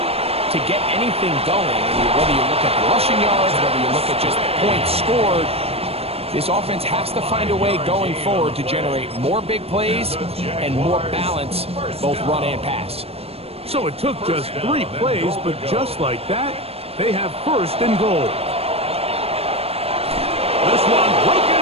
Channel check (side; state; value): left; late; 0.29 ms